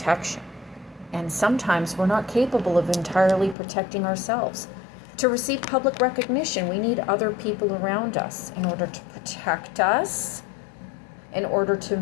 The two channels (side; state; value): right; drops out; at 3.6 s